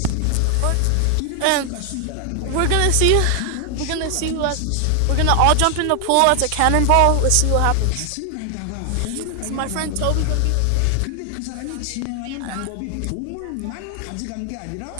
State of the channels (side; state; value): both; different; correlation 0.00